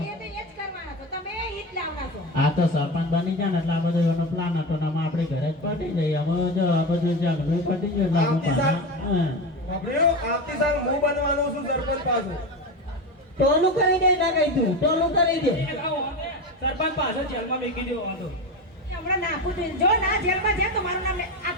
એ તો એ જ કરવાના છો તમે હિત લાવના છો. આ તો સરપંચ બની જાય ને એટલે આ બધો એનો પ્લાન હતો ને આમાં આપણે ઘરે જ પટી જઈએ. અમે જો આ બધું ઝઘડું પટી ગયું એટલે અમે પાછા, હા. બાપડ્યો, આવતી સાલ હું બનવાનો છું સરપંચ પાછો. ટોલું કરી દે ના કઈ તું, ટોલું કરી દે. સરપંચ પાછળ જેલમાં મેકી દેવો વાંધો. એ હમણાં નાખું છું. જો ના જેલમાં જાય તો મારું નામ લે.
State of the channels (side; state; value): both; normal; correlation 0.22